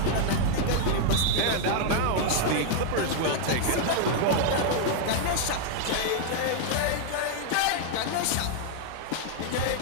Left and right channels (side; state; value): both; different; correlation 0.00